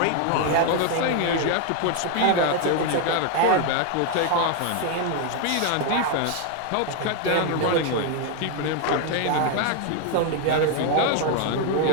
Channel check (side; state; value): both; different; correlation 0.01